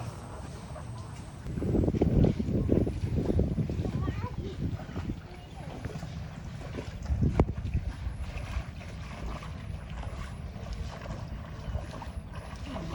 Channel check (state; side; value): identical; both; correlation 1.00